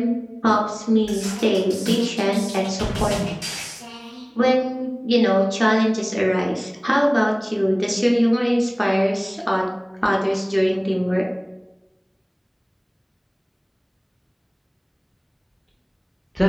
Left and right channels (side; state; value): both; identical; correlation 1.00